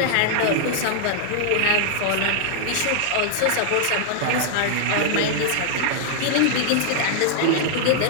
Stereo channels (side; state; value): both; different; correlation -0.01